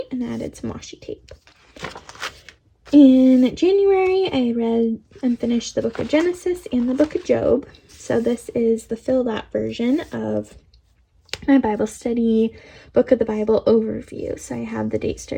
and added some washi tape. In January, I read and finished the book of Genesis and the book of Job. So this is the filled out version of my Bible study book of the Bible overview. So I have the date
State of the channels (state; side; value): identical; both; correlation 1.00